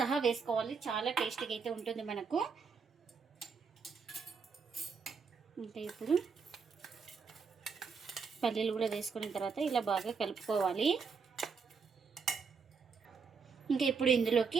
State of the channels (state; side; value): quieter; left; 5.5 dB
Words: వేసుకోవాలి, చాలా టేస్టీగా అయితే ఉంటుంది మనకు. ఇంకా ఇప్పుడు పల్లీలు కూడా వేసుకున్న తర్వాత ఇలా బాగా కలుపుకోవాలి. ఇంకా ఇప్పుడు